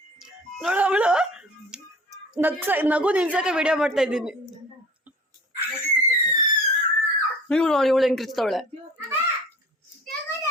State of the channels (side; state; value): both; normal; correlation 0.44